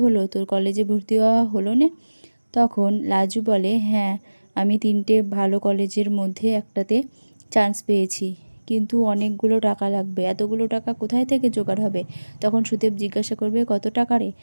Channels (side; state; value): both; inverted; correlation -1.00